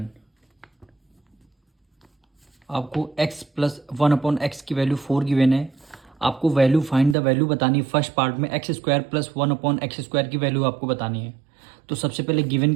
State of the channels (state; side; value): drops out; left; at 7.2 s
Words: आपको x प्लस 1/x की वैल्यू 4 गिवन है। आपको वैल्यू फाइंड द वैल्यू बतानी है। फर्स्ट पार्ट में x² प्लस 1/x² की वैल्यू आपको बतानी है। तो सबसे पहले गिवन